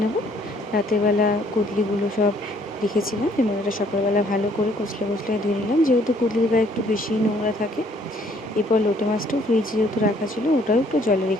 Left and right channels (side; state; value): both; normal; correlation 0.62